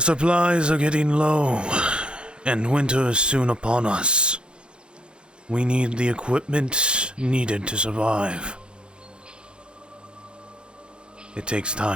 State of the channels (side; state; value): left; late; 0.053 ms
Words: are getting low, and winter is soon upon us. We need the equipment needed to survive. It takes